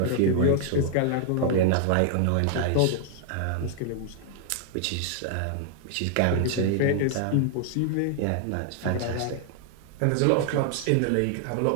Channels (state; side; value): different; both; correlation 0.00